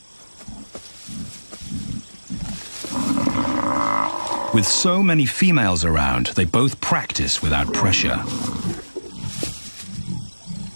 With so many females around, they both practice without pressure.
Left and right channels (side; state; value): both; inverted; correlation -1.00